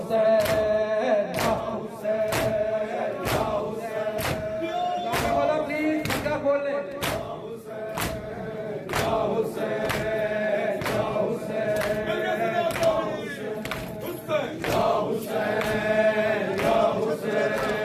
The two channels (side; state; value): both; identical; correlation 1.00